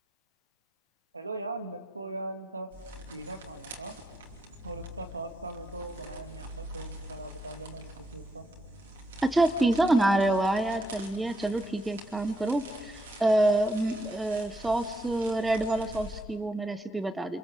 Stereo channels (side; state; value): both; normal; correlation 0.79